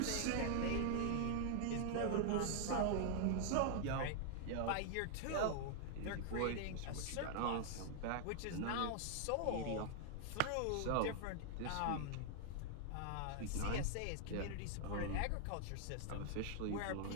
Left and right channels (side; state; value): both; different; correlation 0.00